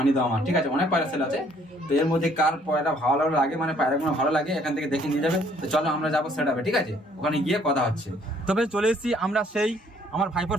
দাও আমার, ঠিক আছে। অনেক পায়রা সেল আছে, তো এর মধ্যে কার পায়রা ভালো লাগে, মানে পায়রাগুলো ভালো লাগে এখান থেকে দেখে নিয়ে যাবে। তো চলো আমরা যাবো সেটআপে, ঠিক আছে, ওখানে গিয়ে কথা হচ্ছে। তবে চলে এসেছি আমরা সেই আমার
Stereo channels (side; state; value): both; normal; correlation 0.63